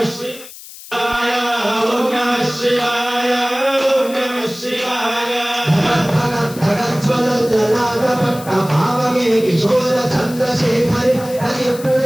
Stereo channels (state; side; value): noise; left; hiss, 16 dB below the sound